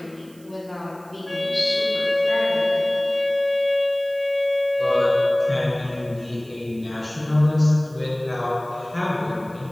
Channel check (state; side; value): noise; right; hiss, 28 dB below the sound